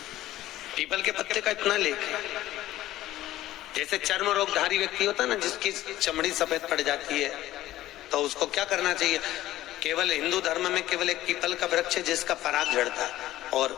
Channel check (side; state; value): right; quieter; 14.9 dB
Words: पीपल के पत्ते का इतना लेख है। जैसे चर्म रोगधारी व्यक्ति होता है ना, जिसकी चमड़ी सफेद पड़ जाती है, तो उसको क्या करना चाहिए? केवल हिंदू धर्म में केवल एक पीपल का वृक्ष है जिसका पराग झड़ता है, और